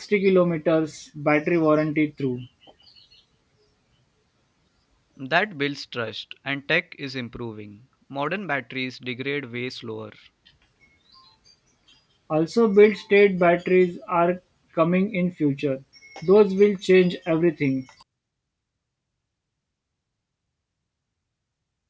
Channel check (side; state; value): both; identical; correlation 1.00